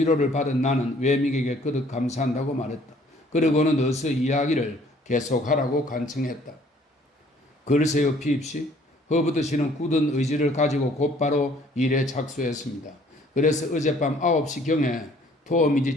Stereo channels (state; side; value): normal; both; correlation 0.58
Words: 받은 나는 웨믹에게 거듭 감사한다고 말했다. 그리고는 어서 이야기를 계속하라고 간청했다. 글쎄요, 핍씨. 허버트 씨는 굳은 의지를 가지고 곧바로 일에 착수했습니다. 그래서 어젯밤 9시경에